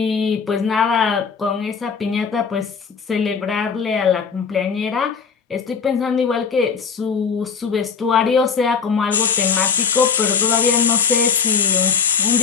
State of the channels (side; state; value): right; quieter; 6.0 dB